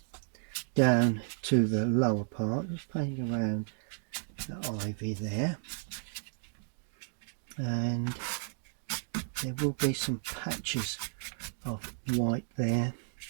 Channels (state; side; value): silent; left; digital silence